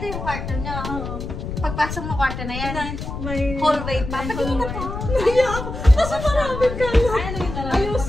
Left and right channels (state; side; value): noise; left; rumble, 6 dB below the sound